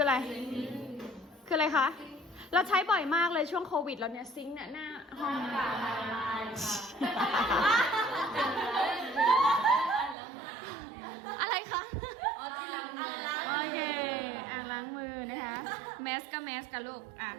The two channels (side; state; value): left; drops out; at 10.2 s